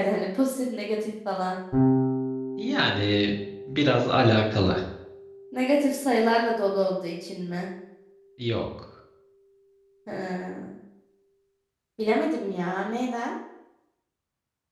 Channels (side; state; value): both; identical; correlation 1.00